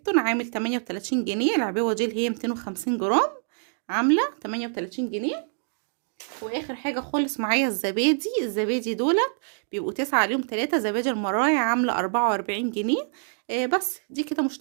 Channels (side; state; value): left; silent; digital silence